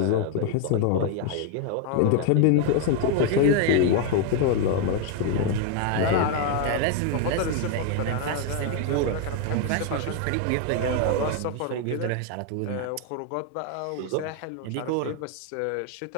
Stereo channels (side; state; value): both; different; correlation 0.01